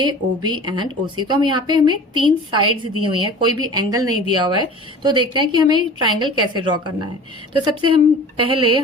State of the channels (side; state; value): both; normal; correlation 0.40